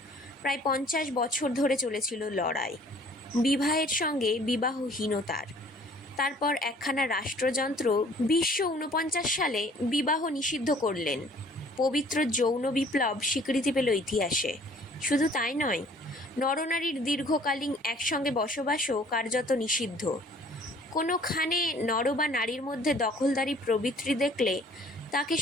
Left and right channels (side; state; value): both; normal; correlation 0.54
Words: প্রায় 50 বছর ধরে চলেছিল লড়াই, বিবাহের সঙ্গে বিবাহহীনতার। তারপর একখানা রাষ্ট্রযন্ত্র 1949 সালে বিবাহ নিষিদ্ধ করলেন। পবিত্র যৌন বিপ্লব স্বীকৃতি পেল ইতিহাসে। শুধু তাই নয়, নরনারীর দীর্ঘকালীন একসঙ্গে বসবাসও কার্যত নিষিদ্ধ। কোনোখানে নর বা নারীর মধ্যে দখলদারি প্রবৃত্তি দেখলে তাকে